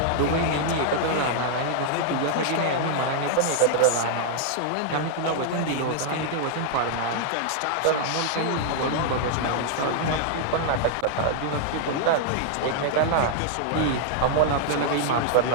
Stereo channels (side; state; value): both; different; correlation -0.01